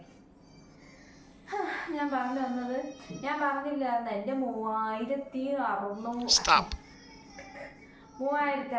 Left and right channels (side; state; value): both; identical; correlation 1.00